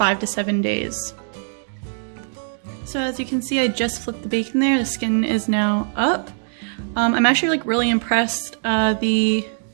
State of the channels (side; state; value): left; silent; digital silence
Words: to 7 days. So as you can see, I just flipped the bacon there. The skin is now up. I'm actually like really impressed. The